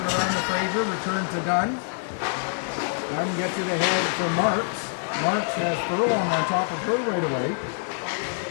around to Fraser, return to Dunn. Dunn gets it ahead for Marks. Marks has Furlong on top of her right away.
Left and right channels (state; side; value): silent; right; 61 dB below the other